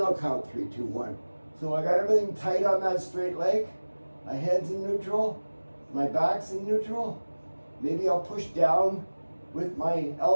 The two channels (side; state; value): both; inverted; correlation -1.00